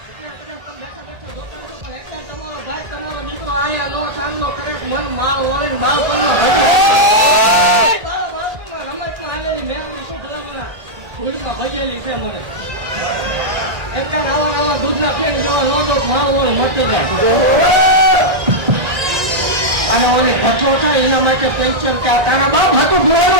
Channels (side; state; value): left; late; 1.8 ms